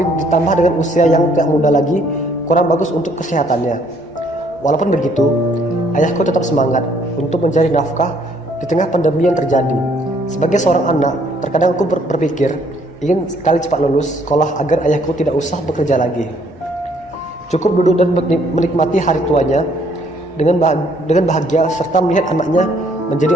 ditambah dengan usia yang tidak muda lagi kurang bagus untuk kesehatannya. Walaupun begitu, ayahku tetap semangat untuk mencari nafkah di tengah pandemi yang terjadi. Sebagai seorang anak, terkadang aku berpikir ingin sekali cepat lulus sekolah agar ayahku tidak usah bekerja lagi. Cukup duduk dan menikmati hari tuanya dengan bahagia serta melihat anaknya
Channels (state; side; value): normal; both; correlation 0.64